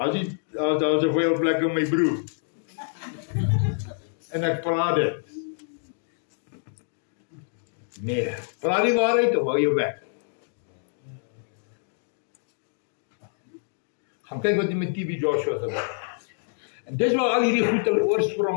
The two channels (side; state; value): right; silent; digital silence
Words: daar 'n veel plek in my broer. En ek praat dit. Nee, praat die waarheid of hou jou bek. Gaan kyk wat die met TB Joshua gebeur. En dis waar al hierdie goed hulle